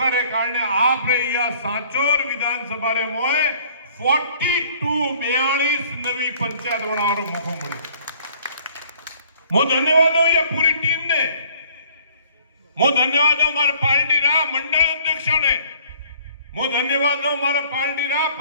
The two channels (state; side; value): inverted; both; correlation -0.56